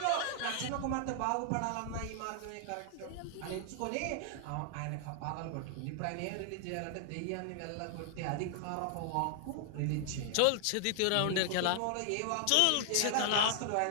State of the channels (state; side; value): different; both; correlation 0.00